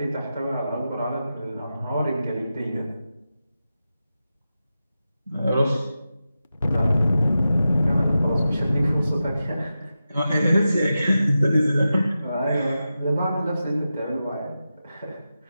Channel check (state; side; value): inverted; both; correlation -0.91